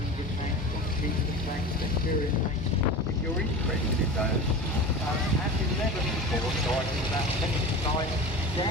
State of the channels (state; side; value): normal; both; correlation 0.32